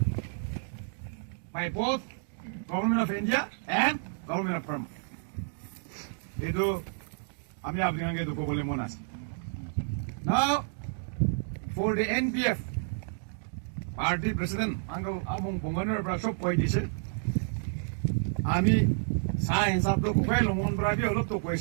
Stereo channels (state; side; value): silent; left; digital silence